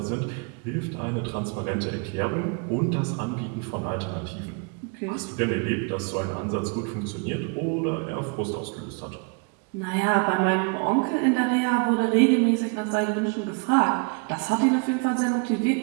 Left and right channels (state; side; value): quieter; left; 34.4 dB